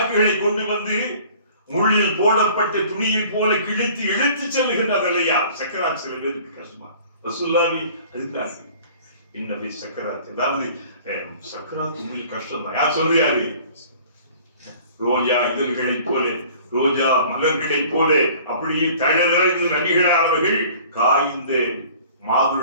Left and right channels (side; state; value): both; inverted; correlation -0.49